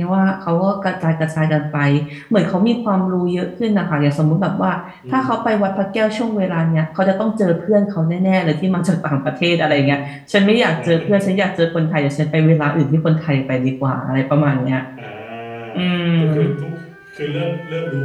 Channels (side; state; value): both; identical; correlation 1.00